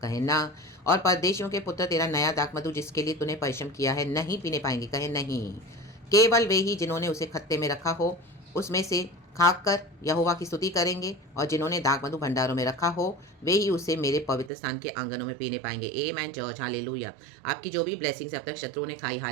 कहे ना। और परदेशियों के पुत्र तेरा नया दाखमधु जिसके लिए तूने परिश्रम किया है नहीं पीने पाएंगे, कहे नहीं। केवल वे ही जिन्होंने उसे खत्ते में रखा हो उसमें से खाकर यहोवा की स्तुति करेंगे, और जिन्होंने दाखमधु भंडारों में रखा हो वे ही उसे मेरे पवित्र स्थान के आंगनों में पीने पाएंगे। आमेन चर्च हालेलुया। आपकी जो भी ब्लेसिंग्स अब तक शत्रुओं ने खाई,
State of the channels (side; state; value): left; drops out; at 14.5 s